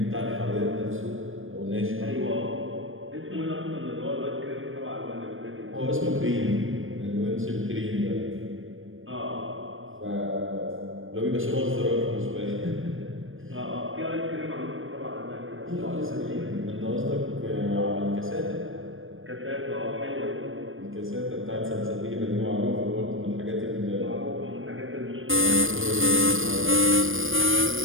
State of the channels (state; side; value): late; left; 0.59 ms